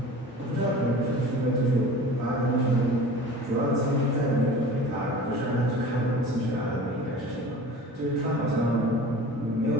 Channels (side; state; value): both; normal; correlation 0.40